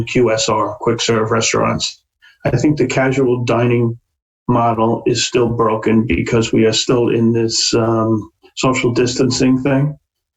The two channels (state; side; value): identical; both; correlation 1.00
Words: QSR, quick serve restaurants. I think the casual dining model is still broken because we are still in this social distancing thing.